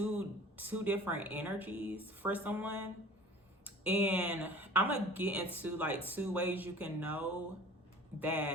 different energies for someone. And I'm gonna get into like 2 ways you can know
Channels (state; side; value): normal; both; correlation 0.44